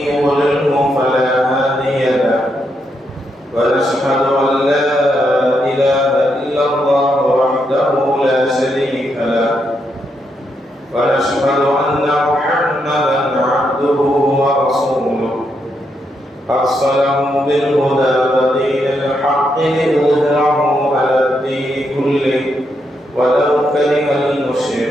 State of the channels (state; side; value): normal; both; correlation 0.80